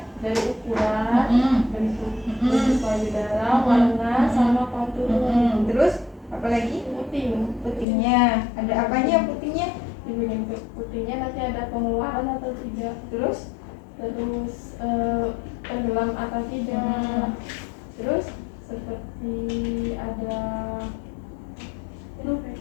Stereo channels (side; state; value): right; drops out; at 7.9 s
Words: Dari ukuran, bentuk payudara, warna, sama kontur. Terus apa lagi? Putingnya. Ada apanya putingnya? Putingnya nanti ada pengeluaran atau tidak. Terus tenggelam atau tidak. Terus Seperti ada